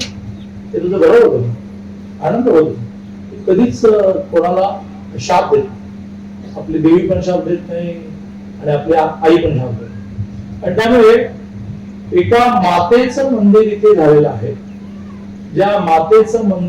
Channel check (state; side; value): identical; both; correlation 1.00